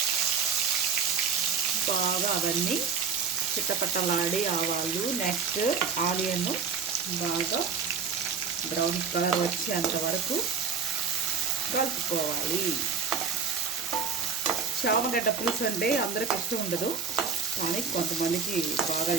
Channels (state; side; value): quieter; left; 6.1 dB